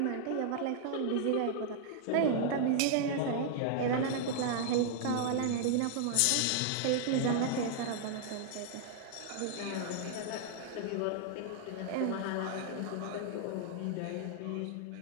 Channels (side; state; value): both; different; correlation -0.01